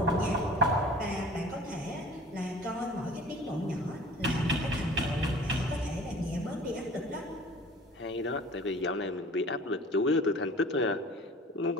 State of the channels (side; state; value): both; normal; correlation 0.45